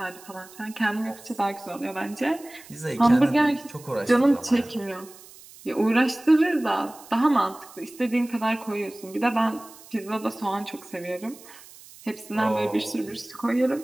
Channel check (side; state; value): right; noise; hiss, 20 dB below the sound